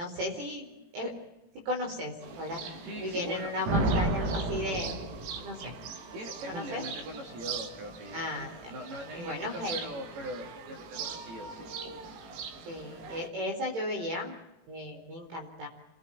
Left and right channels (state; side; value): late; left; 18 ms